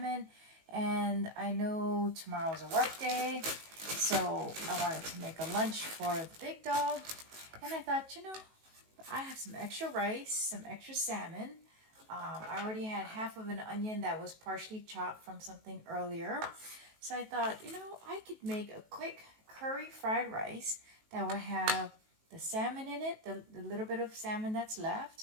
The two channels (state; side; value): late; left; 19 ms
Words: and I know tomorrow's a work day, so I wanted to make a lunch for the big dog. And I thought, I have some extra rice, some extra salmon. I already had half of an onion that was partially chopped from something earlier. So I thought, I could make a quick curry fried rice that will have the salmon in it, the little bit of salmon that's left.